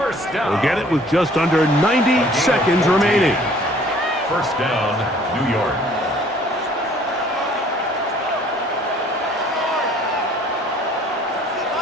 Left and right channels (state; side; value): normal; both; correlation 0.56